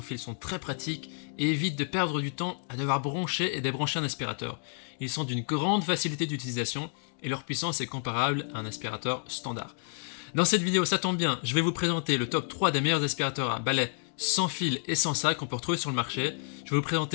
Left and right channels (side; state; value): right; silent; 58 dB below the other